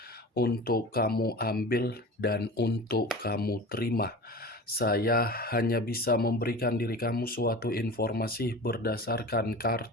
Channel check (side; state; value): both; normal; correlation 0.34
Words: untuk kamu ambil dan untuk kamu terima. Saya hanya bisa memberikan diri kamu suatu informasi berdasarkan